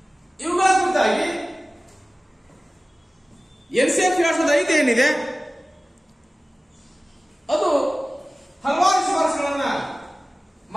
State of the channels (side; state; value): both; normal; correlation 0.97